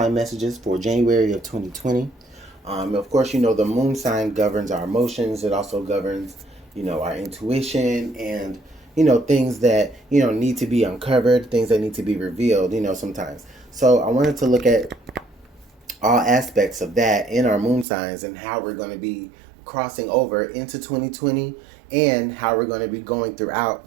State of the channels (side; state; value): left; drops out; at 17.9 s